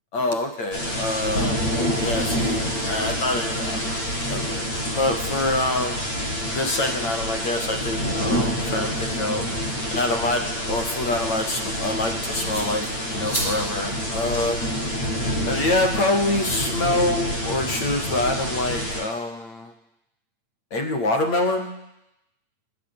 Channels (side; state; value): right; late; 8.8 ms